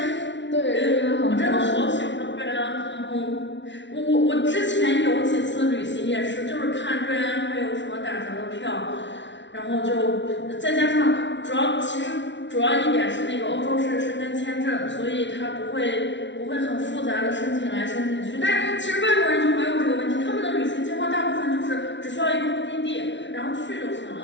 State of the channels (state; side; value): late; right; 0.53 ms